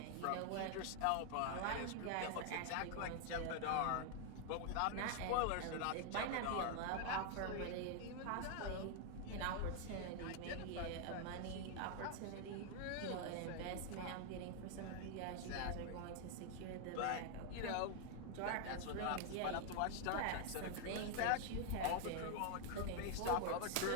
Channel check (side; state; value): both; different; correlation 0.00